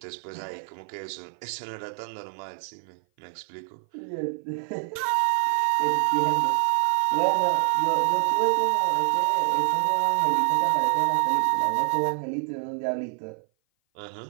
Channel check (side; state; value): left; silent; 57 dB below the other